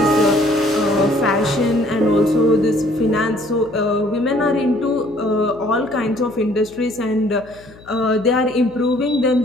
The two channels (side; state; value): left; noise; hum, 23 dB below the sound